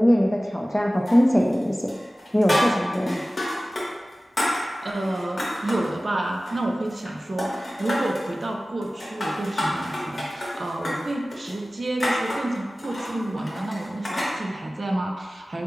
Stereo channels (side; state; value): both; normal; correlation 0.97